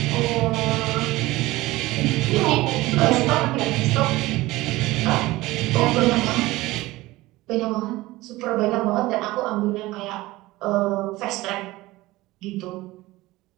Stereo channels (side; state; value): left; quieter; 18.9 dB